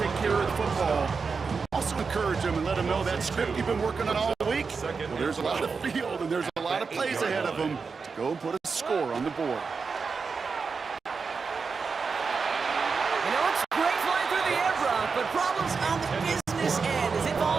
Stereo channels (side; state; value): left; quieter; 5.0 dB